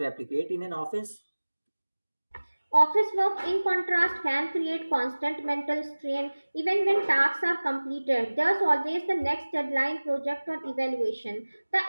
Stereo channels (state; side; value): inverted; both; correlation -1.00